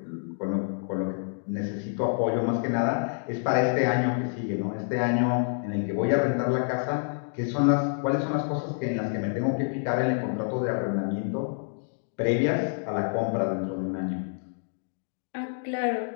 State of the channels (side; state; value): right; silent; digital silence